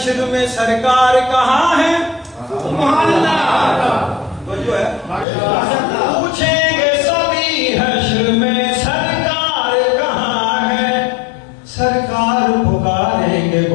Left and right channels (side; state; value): right; drops out; at 5.2 s